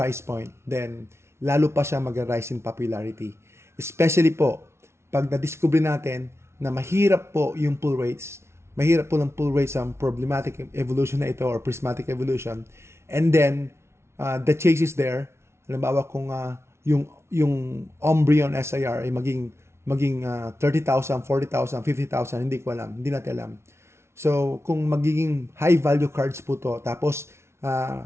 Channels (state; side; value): late; left; 0.13 ms